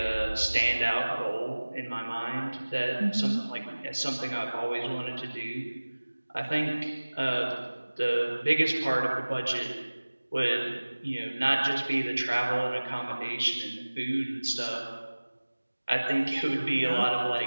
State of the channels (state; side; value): inverted; both; correlation -1.00